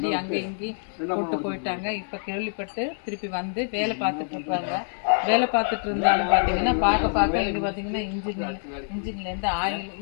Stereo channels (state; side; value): silent; right; 61 dB below the other